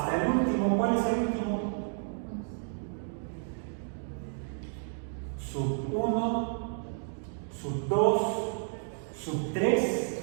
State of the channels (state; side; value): silent; left; digital silence